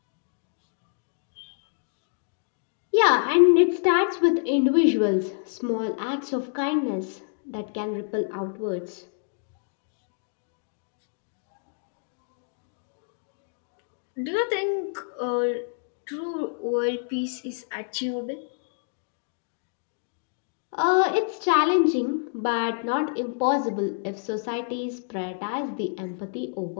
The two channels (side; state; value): right; silent; digital silence